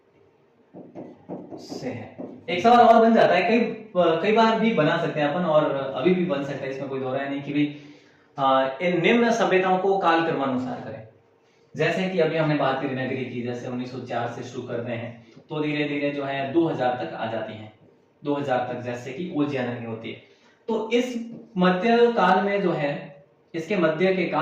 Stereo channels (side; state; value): both; identical; correlation 1.00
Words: से है एक सवाल और बन जाता है, कई बार भी बना सकते हैं अपन, और अभी भी बन सकता है, इसमें कोई दो राय नहीं कि भी इन निम्न सभ्यताओं को काल क्रमानुसार करें। जैसे कि अभी हमने बात करी नगरी की, जैसे 1904 से शुरू करते हैं तो धीरे धीरे जो है 2000 तक आ जाती हैं, 2000 तक, जैसे कि ओजिया नगरी होती है। तो इस मध्य काल में जो है, इसके मध्य के